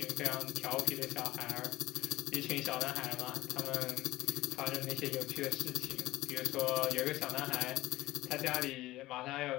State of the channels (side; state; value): right; quieter; 17.4 dB